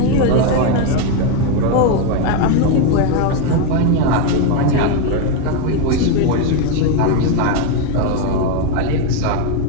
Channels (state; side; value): different; both; correlation 0.02